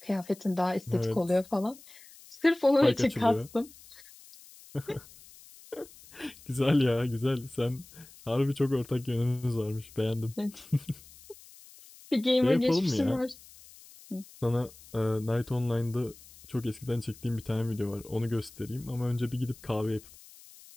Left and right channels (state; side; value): noise; left; hiss, 22 dB below the sound